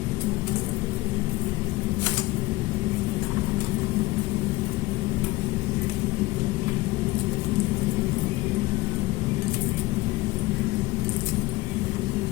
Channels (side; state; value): right; quieter; 20.0 dB